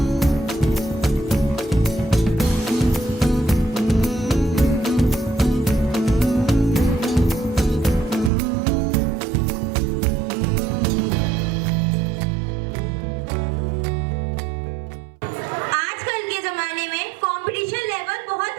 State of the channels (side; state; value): left; drops out; at 8.3 s